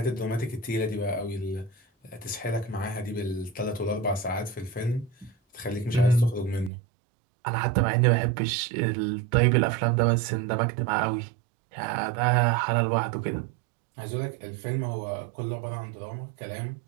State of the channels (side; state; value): left; drops out; at 6.7 s